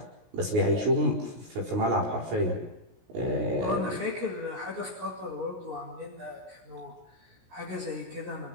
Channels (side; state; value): left; late; 17 ms